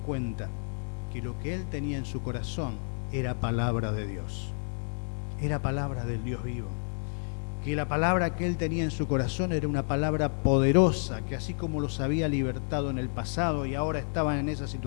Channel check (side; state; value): right; silent; 58 dB below the other